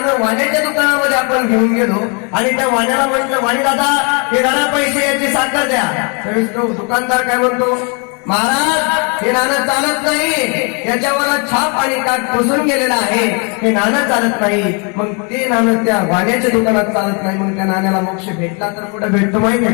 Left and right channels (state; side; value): quieter; right; 35.1 dB